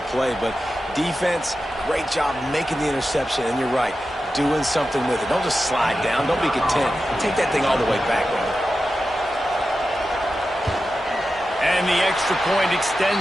play. But defense, great job making the interception. And you're right, doing something with it. Don't just slide down. Don't be content. Take that thing all the way back, man. And the extra point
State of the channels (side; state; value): both; normal; correlation 0.92